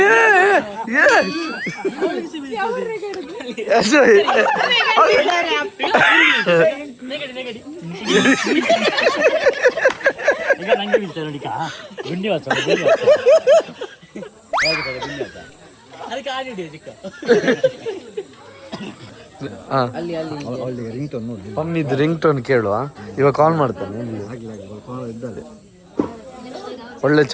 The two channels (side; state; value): both; identical; correlation 1.00